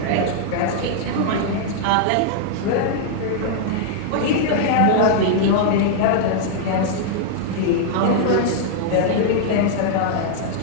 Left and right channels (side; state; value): both; different; correlation -0.01